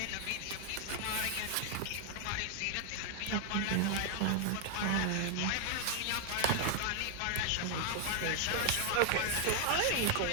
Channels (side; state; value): both; different; correlation 0.00